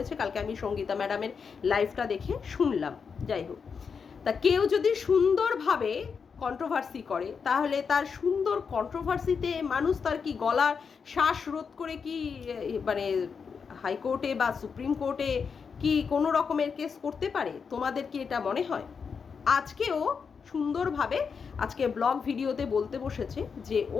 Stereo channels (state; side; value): quieter; right; 5.9 dB